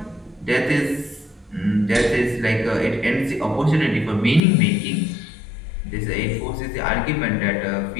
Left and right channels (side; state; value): right; drops out; at 4.4 s